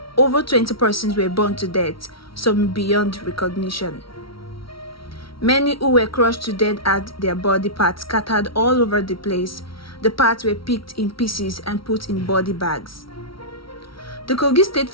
Over 20 persons were burned to death, some beyond recognition. Many who were crushed to death had their body parts scattered all over the place. The parts were picked in pieces and put in body bags. The Kogi State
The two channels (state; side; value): late; right; 0.75 ms